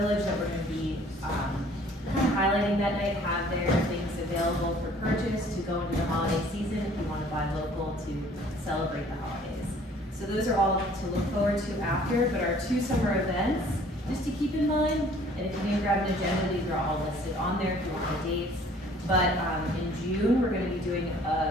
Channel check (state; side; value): normal; both; correlation 0.55